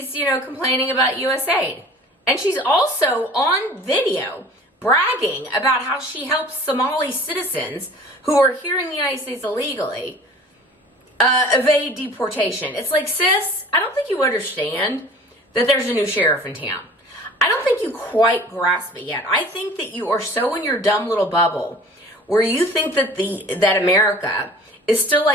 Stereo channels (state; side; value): normal; both; correlation 0.46